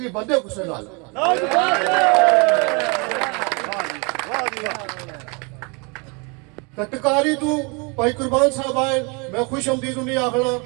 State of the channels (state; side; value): quieter; left; 31.7 dB